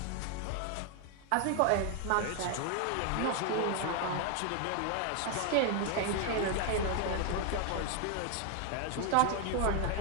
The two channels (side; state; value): both; different; correlation 0.00